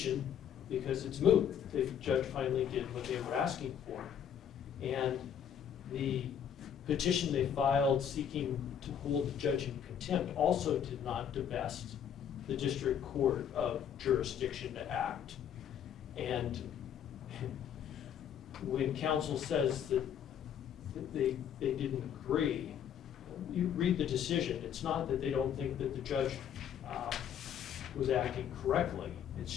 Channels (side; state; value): right; quieter; 8.8 dB